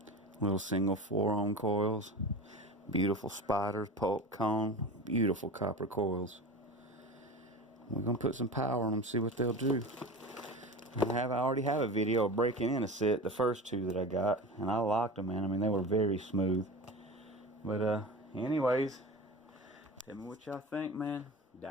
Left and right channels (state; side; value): normal; both; correlation 0.31